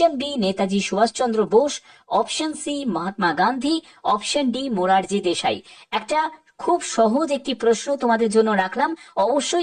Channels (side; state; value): both; identical; correlation 1.00